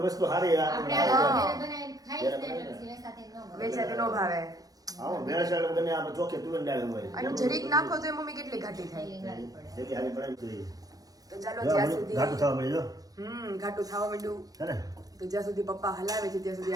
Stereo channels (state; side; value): late; left; 0.18 ms